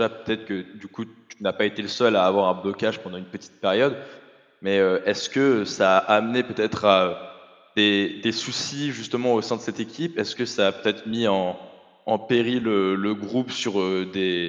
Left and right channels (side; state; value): both; identical; correlation 1.00